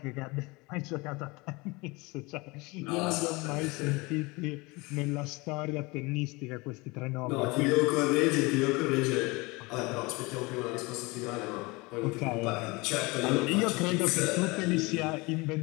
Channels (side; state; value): right; quieter; 24.9 dB